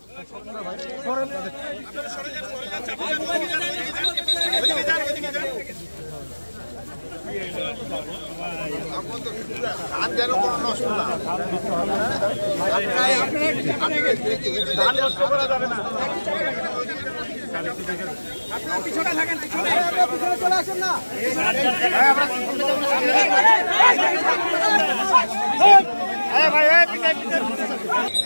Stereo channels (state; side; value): inverted; both; correlation -1.00